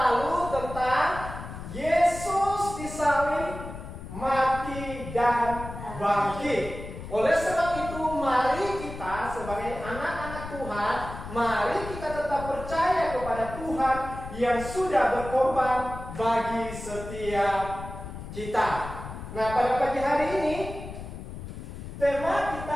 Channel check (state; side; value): noise; left; rumble, 10 dB below the sound